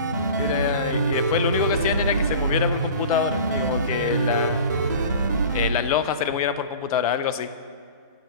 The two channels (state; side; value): inverted; both; correlation -0.39